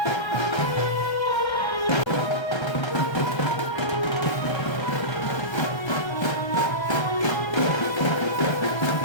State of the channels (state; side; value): late; right; 1.3 ms